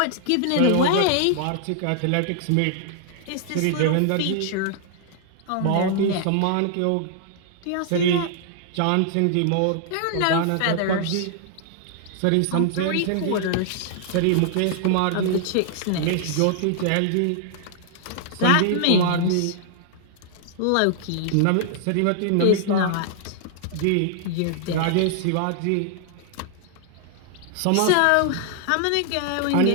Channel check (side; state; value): both; different; correlation -0.01